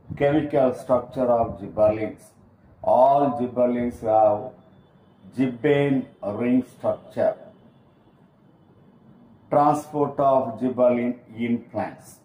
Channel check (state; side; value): identical; both; correlation 1.00